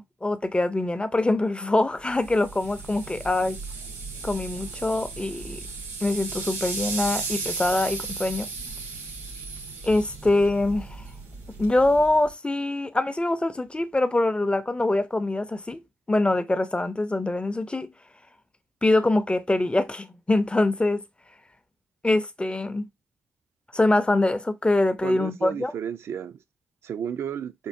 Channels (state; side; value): normal; both; correlation 0.91